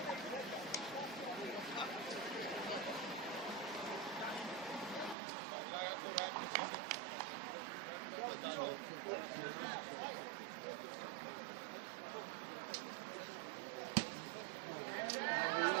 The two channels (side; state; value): left; drops out; at 5.2 s